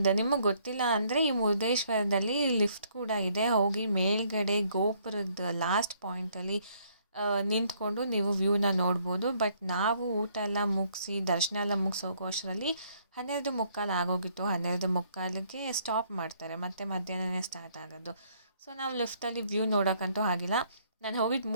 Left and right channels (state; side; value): inverted; both; correlation -0.66